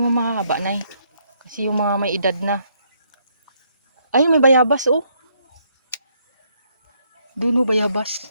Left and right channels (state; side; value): inverted; both; correlation -0.72